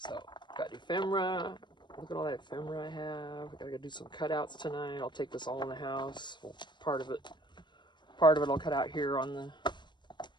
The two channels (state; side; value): late; right; 0.22 ms